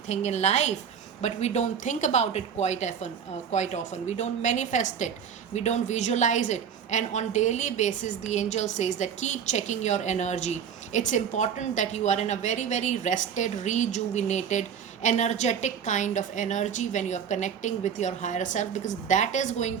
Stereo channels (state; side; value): quieter; left; 7.7 dB